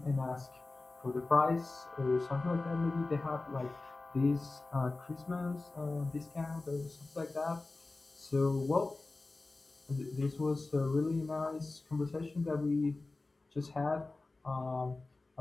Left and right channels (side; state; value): right; quieter; 3.3 dB